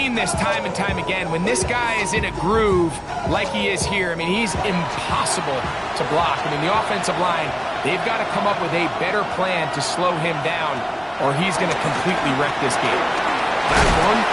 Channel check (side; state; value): both; identical; correlation 1.00